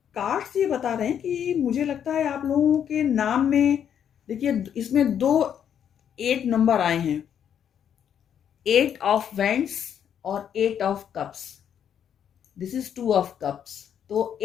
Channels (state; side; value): quieter; right; 8.9 dB